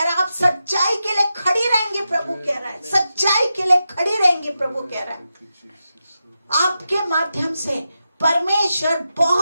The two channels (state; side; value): inverted; both; correlation -0.89